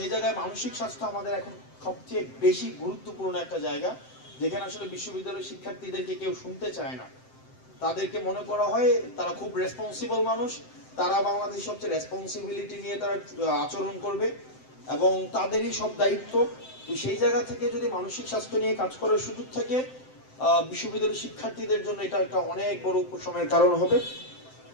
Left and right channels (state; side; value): late; right; 7.7 ms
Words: জায়গায় মানসিক স্বাস্থ্য আমাদের এখন সবচেয়ে বেশি গুরুত্বপূর্ণ একটা জায়গা, যেখানে আসলে বিশ্ববিদ্যালয়ের শিক্ষার্থীদেরকে কেউ শুনতে চায় না। তাদেরকে মনে করা হয় তারা খুব রেসপন্সিবল মানুষ, তারা বাংলাদেশের সবচেয়ে রেসপন্সিবিলিটি নিয়ে তারা আচরণ করবে এবং তাদেরই সব দায়িত্ব। তো সেই জায়গা থেকে যদি মানসিক স্বাস্থ্য নিয়ে কাজ করার সুযোগ থাকে, বিশ্ববিদ্যালয়ের শিক্ষার্থীদের জন্য এটা একটা অনেক বড় উপশমের কারণ হবে।